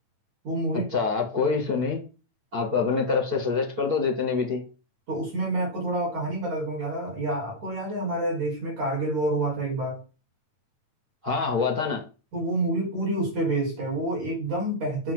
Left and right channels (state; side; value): late; left; 8.9 ms